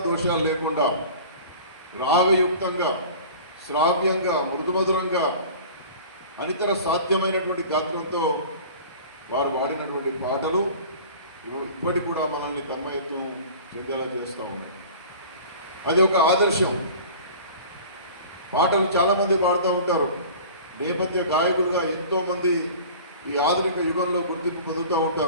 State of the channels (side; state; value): both; inverted; correlation -0.41